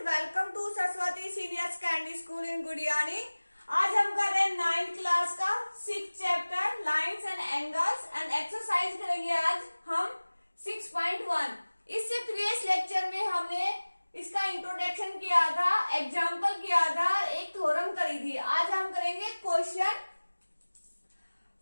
welcome to Saraswati senior secondary school in Gudiyani. आज हम कर रहे हैं 9th क्लास का 6th chapter lines and angles and exercise करेंगे आज हम 6.1। इससे प्रीवियस लेक्चर में हमने इसका इंट्रोडक्शन किया था, एग्जाम्पल किया था, एक थ्योरम करी थी। आज हम करेंगे question.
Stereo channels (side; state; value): both; inverted; correlation -1.00